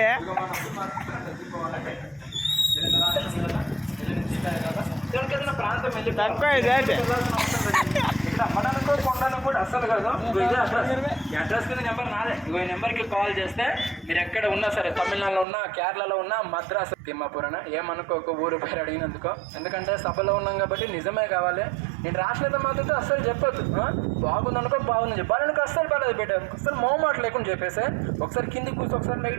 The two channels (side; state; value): left; drops out; at 15.5 s